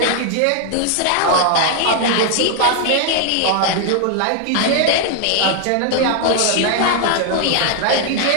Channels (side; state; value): both; different; correlation 0.00